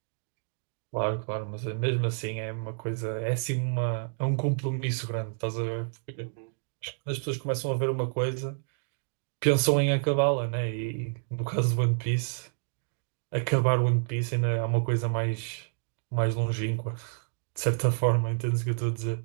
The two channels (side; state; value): left; silent; digital silence